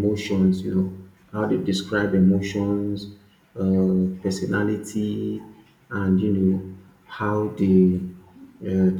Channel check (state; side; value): identical; both; correlation 1.00